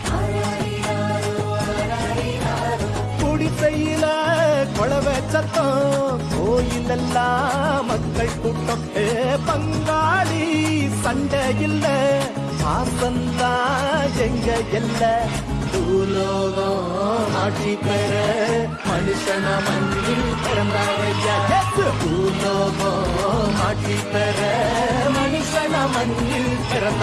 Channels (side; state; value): both; identical; correlation 1.00